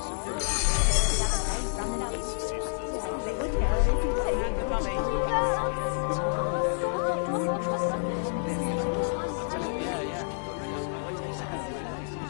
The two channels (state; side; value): silent; right; digital silence